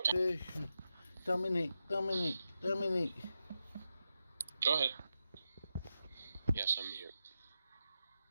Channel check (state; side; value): inverted; both; correlation -0.88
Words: Dominic. Go ahead. Yes, I'm here.